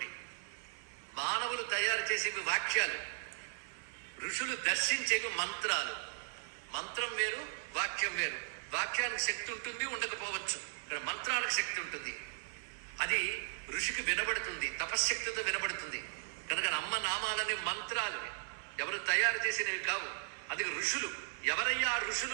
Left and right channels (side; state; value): left; silent; digital silence